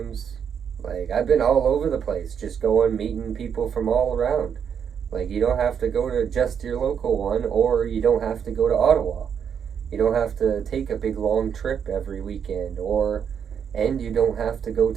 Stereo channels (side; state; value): left; quieter; 7.7 dB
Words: Like, I've been all over the place, just going, meeting people from all around. Like, you don't have to go to just your local one, or you don't have to go to Ottawa. You don't have to take a big long trip every weekend, and you don't have to go